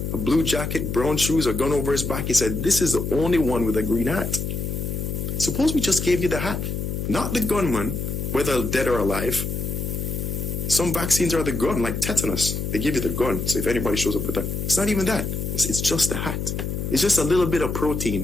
a blue jacket, brown shoes, a gun over his back. He said, this is the only one with a green hat. Suppose we just gave you the hat, not the gunman, whether dead or alive. Some vaccines are the gun, like tetanus. They give you the gun, so if anybody shows up with that. It's not even that. It's just the hat. It's just a little bit of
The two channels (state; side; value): noise; left; hum, 3 dB below the sound